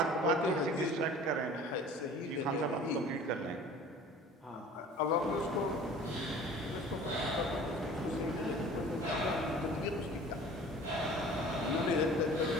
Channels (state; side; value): normal; both; correlation 0.45